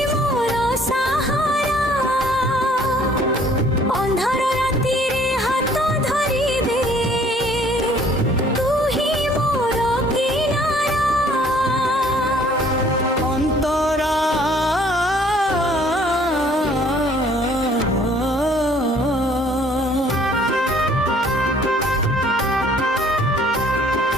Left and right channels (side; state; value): both; normal; correlation 0.58